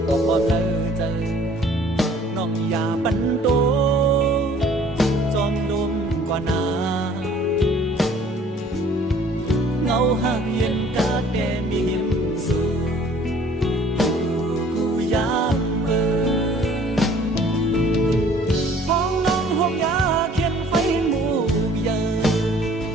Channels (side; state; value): both; normal; correlation 0.54